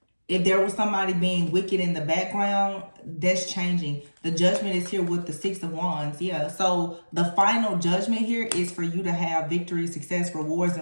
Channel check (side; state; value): both; inverted; correlation -1.00